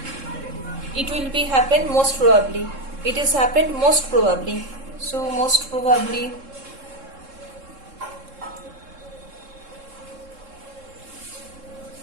it will be happen most probably, it is happened most probably, so most probably,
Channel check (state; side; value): late; left; 3.7 ms